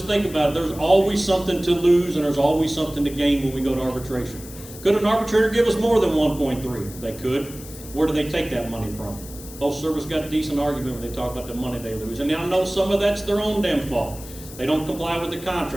think about it. There's always something to lose and there's always something to gain when we go to arbitration. Could an arbitrator give us more than 1.3? They could. Where do they take that money from? Postal Service got a decent argument when they talk about the money they lose. And I know some of that's their own damn fault. They don't comply with the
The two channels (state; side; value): noise; left; hiss, 16 dB below the sound